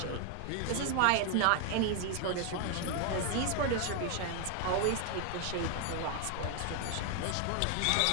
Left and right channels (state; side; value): different; both; correlation 0.00